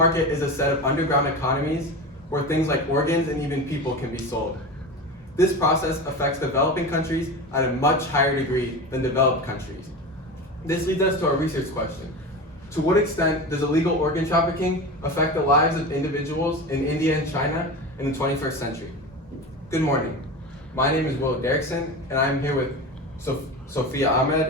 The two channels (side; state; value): both; normal; correlation 0.27